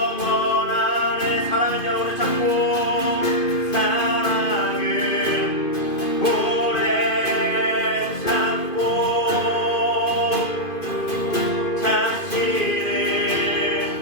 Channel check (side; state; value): right; late; 2.5 ms